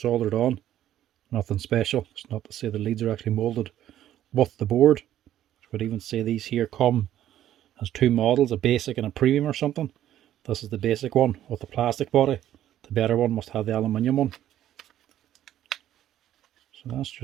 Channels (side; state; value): left; quieter; 12.1 dB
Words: soldered on. Nothing special. It's not to say the leads are actually moulded with the board. I would even say these here come as two models, a basic and a premium or something. This is the basic one with the plastic body. The better one must have the aluminium one. So that's